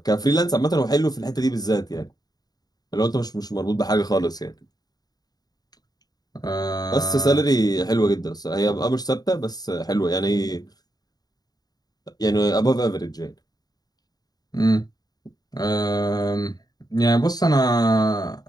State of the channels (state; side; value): late; right; 0.19 ms